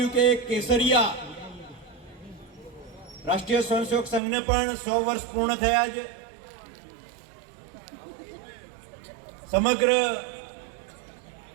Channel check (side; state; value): left; drops out; at 4.2 s